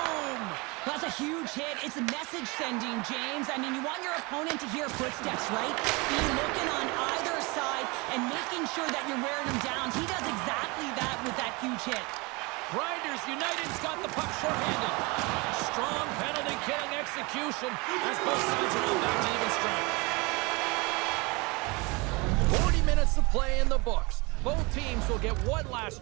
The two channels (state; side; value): quieter; left; 26.7 dB